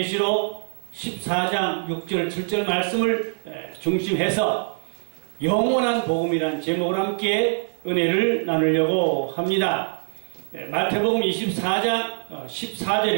14장 6절 7절 말씀을 중심해서 영원한 복음이란 제목으로 함께 은혜를 나누려고 합니다. 마태복음 24장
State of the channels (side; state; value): left; silent; digital silence